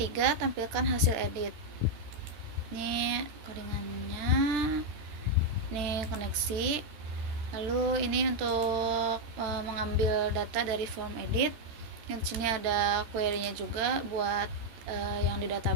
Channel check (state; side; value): late; left; 13 ms